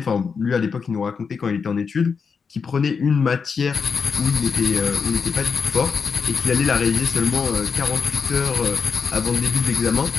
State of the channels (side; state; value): right; quieter; 5.7 dB